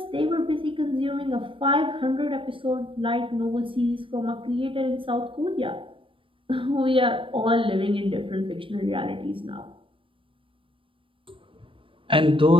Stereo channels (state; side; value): late; left; 0.25 ms